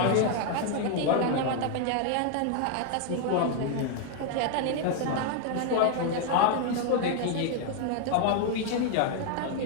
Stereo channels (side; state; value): both; different; correlation 0.00